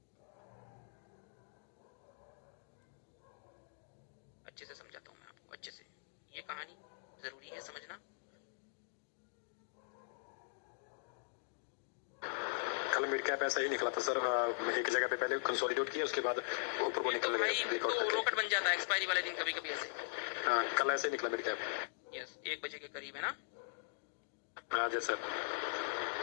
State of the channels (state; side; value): silent; right; digital silence